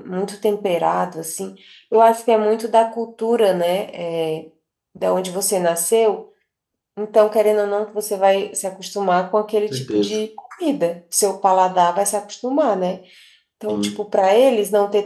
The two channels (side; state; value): both; identical; correlation 1.00